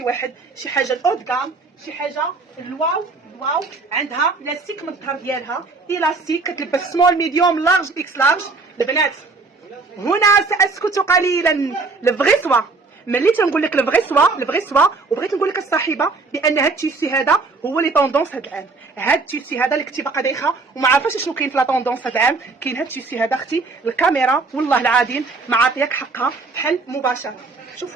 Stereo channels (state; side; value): quieter; left; 3.9 dB